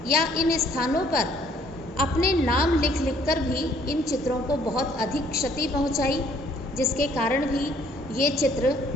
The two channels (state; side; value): normal; both; correlation 0.62